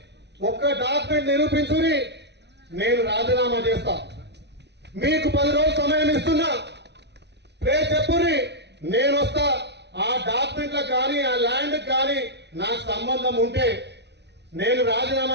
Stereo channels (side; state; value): left; late; 0.50 ms